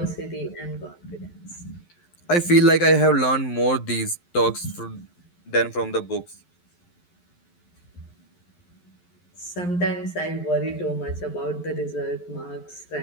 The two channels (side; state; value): right; late; 11 ms